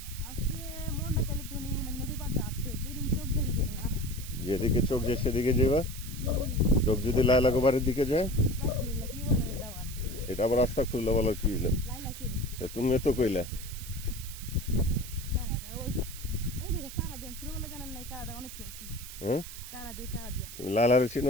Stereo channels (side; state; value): right; noise; hiss, 12 dB below the sound